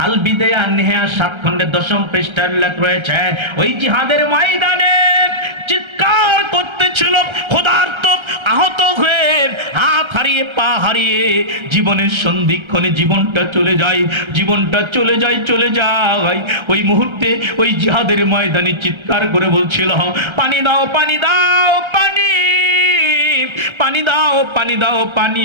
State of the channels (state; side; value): late; left; 1.3 ms